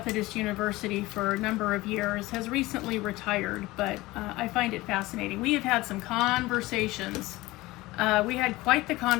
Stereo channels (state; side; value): quieter; right; 19.7 dB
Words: University for a number of years, has recently retired, but I find it fascinating. We have had some conversations. We had quite the